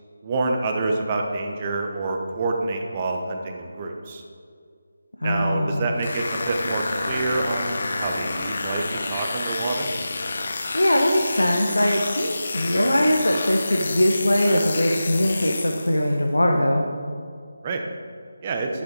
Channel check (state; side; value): inverted; both; correlation -0.91